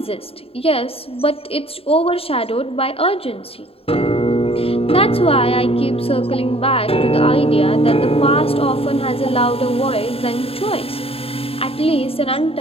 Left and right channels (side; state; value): right; late; 0.28 ms